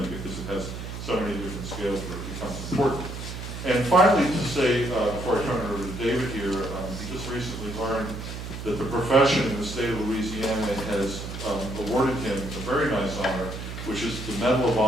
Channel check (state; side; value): noise; right; hum, 8 dB below the sound